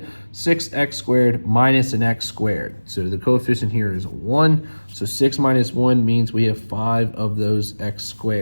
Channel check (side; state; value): both; inverted; correlation -1.00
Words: 6x squared minus an x squared. So the coefficient here is 1, so 6 minus 1 means we have 5 of those x